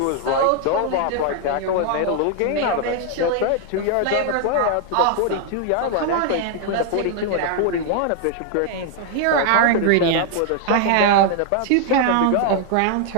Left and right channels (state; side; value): different; both; correlation 0.00